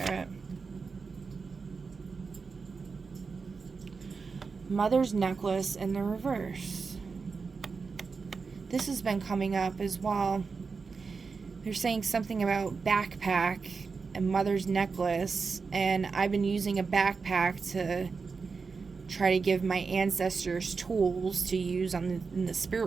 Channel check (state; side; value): quieter; left; 4.8 dB